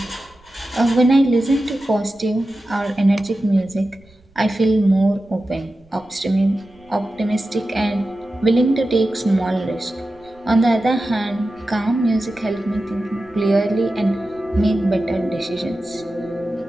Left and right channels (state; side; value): noise; right; rumble, 30 dB below the sound